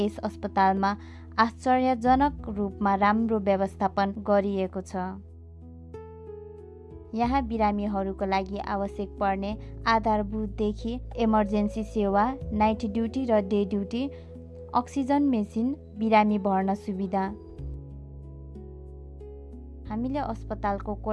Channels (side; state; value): both; identical; correlation 1.00